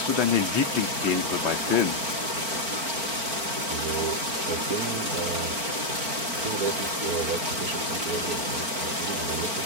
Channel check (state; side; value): late; left; 4.4 ms